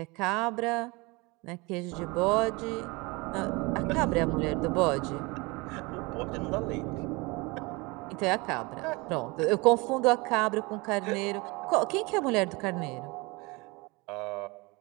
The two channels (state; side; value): quieter; left; 25.7 dB